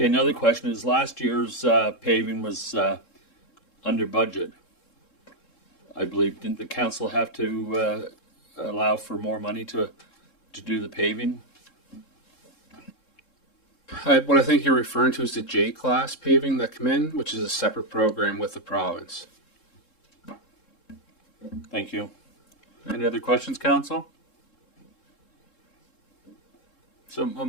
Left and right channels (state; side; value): late; right; 3.7 ms